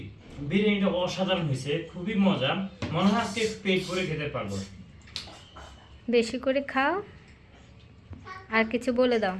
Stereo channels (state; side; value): identical; both; correlation 1.00